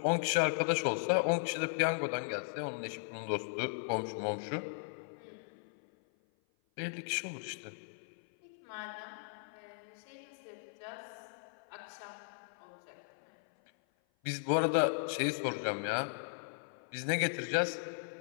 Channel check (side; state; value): right; silent; 53 dB below the other